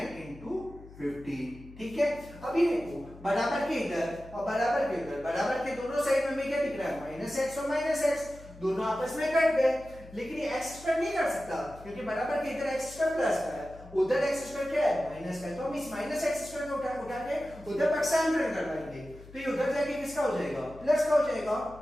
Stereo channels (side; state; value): left; noise; hum, 18 dB below the sound